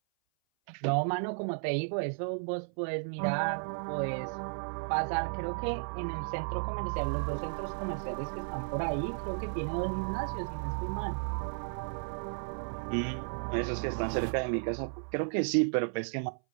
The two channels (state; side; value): silent; left; 55 dB below the other